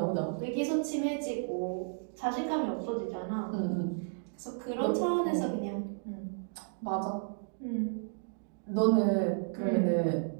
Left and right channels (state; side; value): silent; left; digital silence